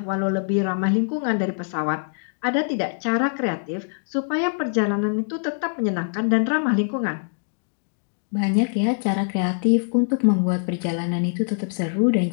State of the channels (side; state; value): right; silent; digital silence